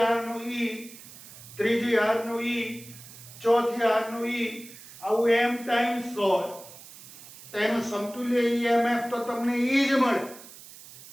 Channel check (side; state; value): right; noise; hiss, 18 dB below the sound